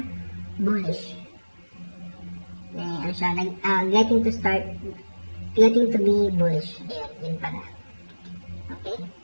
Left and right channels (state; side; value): inverted; both; correlation -1.00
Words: bullish. Getting to be bullish. Ayan, yun pala. Okay?